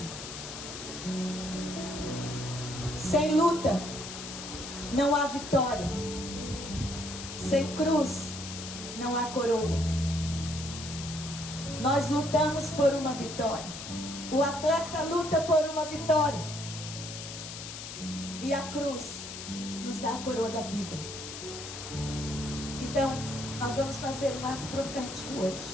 sem luta não há vitória. Sem cruz não há coroa. Nós lutamos por uma vitória. O atleta luta por uma vitória. E a cruz nos dá a coroa da vida. Então, nós vamos fazer um ato profético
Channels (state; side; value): noise; left; hiss, 9 dB below the sound